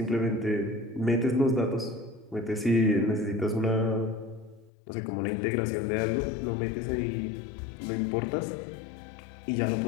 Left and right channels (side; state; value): right; drops out; at 4.7 s